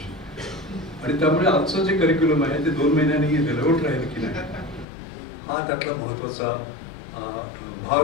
आणि त्यामुळे आजचं जे करिक्युलम आहे ते 2 महिन्यांनी रिलेव्हंट राहील की नाही, हा त्यातला महत्त्वाचा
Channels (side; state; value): right; drops out; at 4.9 s